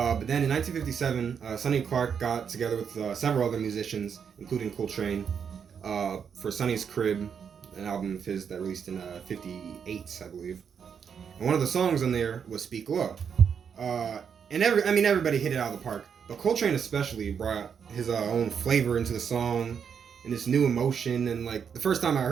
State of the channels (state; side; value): quieter; left; 7.1 dB